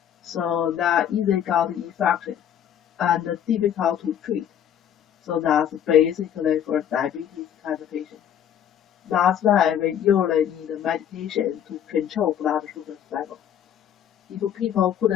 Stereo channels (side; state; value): right; quieter; 9.6 dB